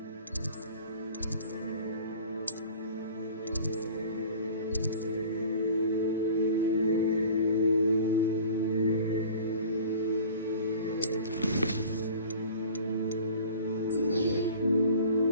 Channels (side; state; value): both; inverted; correlation -0.44